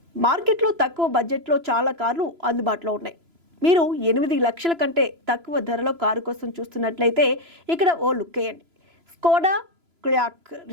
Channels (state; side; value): late; left; 3.0 ms